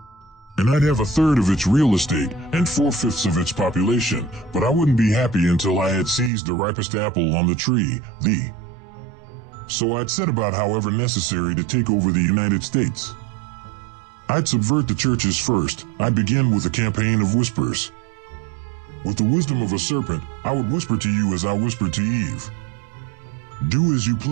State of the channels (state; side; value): drops out; left; at 6.3 s